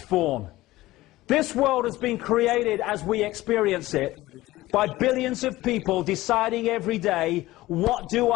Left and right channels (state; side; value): quieter; right; 17.5 dB